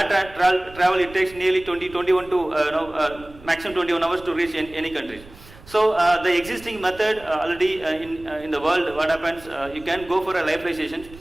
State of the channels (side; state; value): right; noise; rumble, 20 dB below the sound